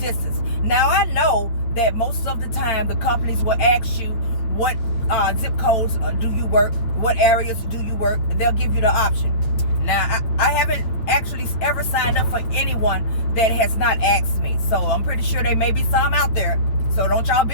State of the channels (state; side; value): late; right; 8.9 ms